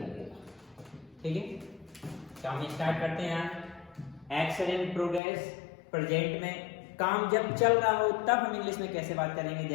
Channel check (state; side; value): drops out; right; at 5.2 s